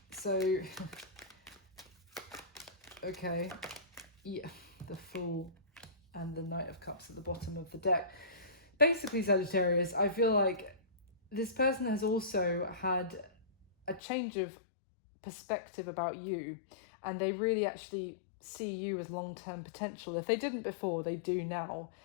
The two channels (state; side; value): drops out; right; at 14.0 s